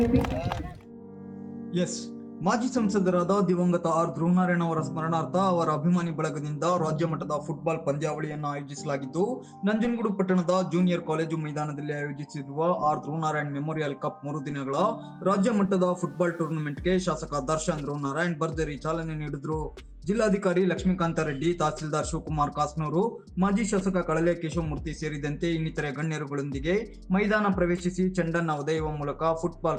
ಎಸ್, ಮಾಜಿ ಸಂಸದರಾದ ದಿವಂಗತ ಆರ್ ಧ್ರುವನಾರಾಯಣ ಅವರ ಸ್ಮರಣಾರ್ಥ ಅವರ ಅಭಿಮಾನಿ ಬಳಗದಿಂದ ರಾಜ್ಯ ಮಟ್ಟದ ಫುಟ್ಬಾಲ್ ಪಂದ್ಯಾವಳಿಯನ್ನು ಆಯೋಜಿಸಲಾಗಿದ್ದು, ನಂಜನಗೂಡು ಪಟ್ಟಣದ ಜೂನಿಯರ್ ಕಾಲೇಜು ಮೈದಾನದಲ್ಲಿ ಆಯೋಜಿಸಿರುವ ಆರ್ ಧ್ರುವನಾರಾಯಣ್ ಮೆಮೋರಿಯಲ್ ಕಪ್ 3 ದಿನಗಳ ರಾಜ್ಯ ಮಟ್ಟದ ಫುಟ್ಬಾಲ್ ಟೂರ್ನಮೆಂಟ್ಗೆ ಶಾಸಕ ದರ್ಶನ್ ಧ್ರುವನಾರಾಯಣ್ ಭರ್ಜರಿ ಚಾಲನೆ ನೀಡಿದ್ರು. ಜಿಲ್ಲಾಧಿಕಾರಿ ಲಕ್ಷ್ಮೀಕಾಂತ ರೆಡ್ಡಿ, ತಹಸೀಲ್ದಾರ್ ಶಿವಕುಮಾರ್ ಕಾಸ್ನೂರು, ಮಾಜಿ ಶಾಸಕ ಕಳಲೆ ಕೇಶವಮೂರ್ತಿ ಸೇರಿದಂತೆ ಇನ್ನಿತರೆ ಗಣ್ಯರುಗಳೊಂದಿಗೆ ಮೈದಾನ ಪ್ರವೇಶಿಸಿ ಚೆಂಡನ್ನ ಒದೆಯುವ ಮೂಲಕ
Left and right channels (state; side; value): identical; both; correlation 1.00